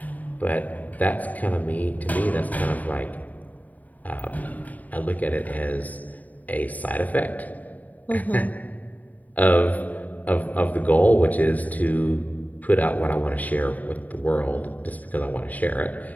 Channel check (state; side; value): late; right; 0.076 ms